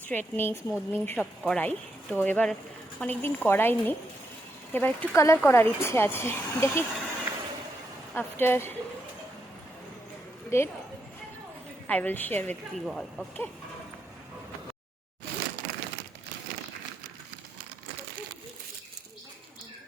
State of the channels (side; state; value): both; normal; correlation 0.81